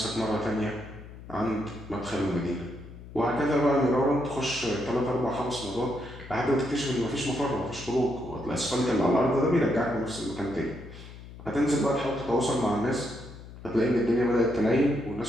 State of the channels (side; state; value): left; noise; hum, 15 dB below the sound